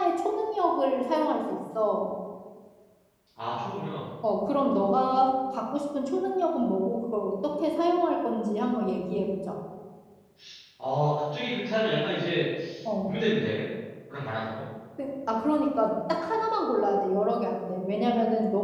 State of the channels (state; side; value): identical; both; correlation 1.00